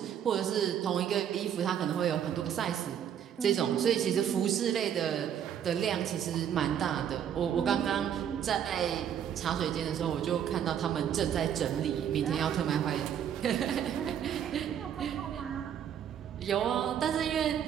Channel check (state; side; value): quieter; left; 9.2 dB